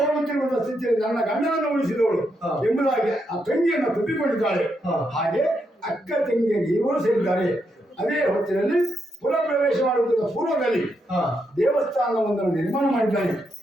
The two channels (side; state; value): both; normal; correlation 0.81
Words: ಸ್ಥಿತಿಯಲ್ಲಿ ನನ್ನ ಗಂಡನನ್ನು ಉಳಿಸಿದವಳು ಎಂಬುದಾಗಿ ಆ ತಂಗಿಯನ್ನು ತಪ್ಪಿಕೊಂಡಿದ್ದಾಳೆ. ಹಾಗೆ ಅಕ್ಕ ತಂಗಿಯಾಗಿ ಇವರು ಸೇರಿದ್ದಾರೆ. ಅದೇ ಹೊತ್ತಿನಲ್ಲಿ ಪುರ ಪ್ರವೇಶ ಮಾಡುತ್ತಿದ್ದ ಪೂರ್ವದಲ್ಲಿ ದೇವಸ್ಥಾನವೊಂದನ್ನು ನಿರ್ಮಾಣ ಮಾಡಿದ್ದಾನೆ.